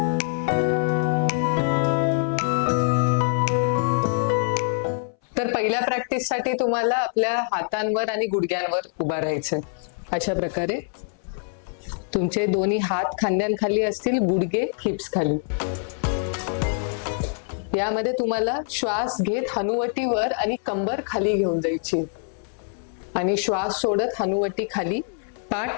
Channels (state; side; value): silent; right; 62 dB below the other